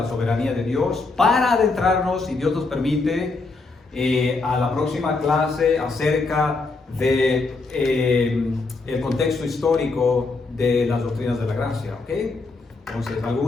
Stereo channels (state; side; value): quieter; right; 3.7 dB